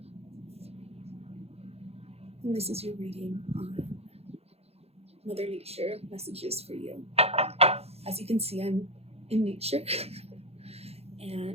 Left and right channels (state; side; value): late; left; 0.29 ms